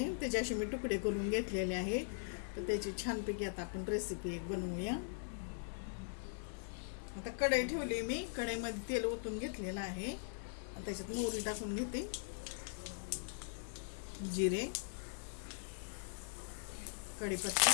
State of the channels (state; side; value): silent; right; digital silence